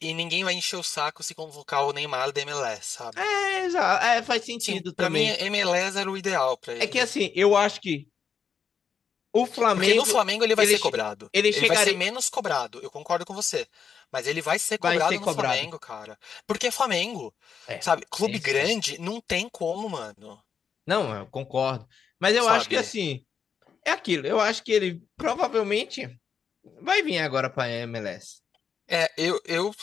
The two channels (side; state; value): right; quieter; 6.9 dB